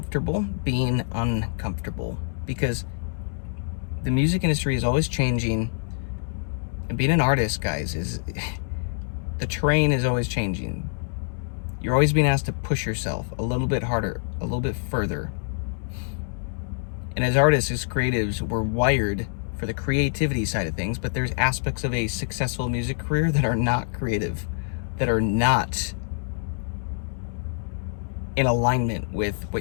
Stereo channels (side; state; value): right; silent; digital silence